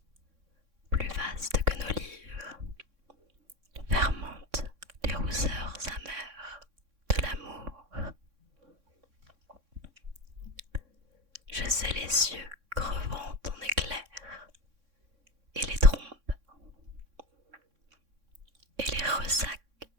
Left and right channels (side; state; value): left; late; 3.6 ms